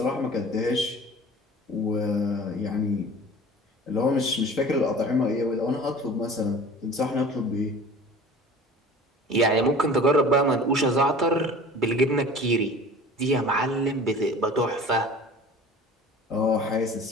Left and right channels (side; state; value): both; normal; correlation 0.42